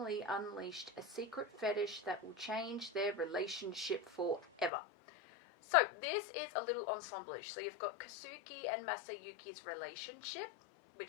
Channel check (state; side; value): drops out; right; at 4.7 s